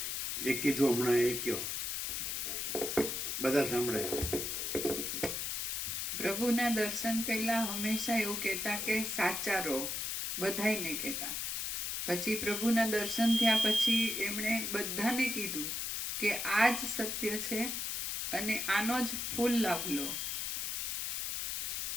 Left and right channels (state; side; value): noise; left; hiss, 1 dB below the sound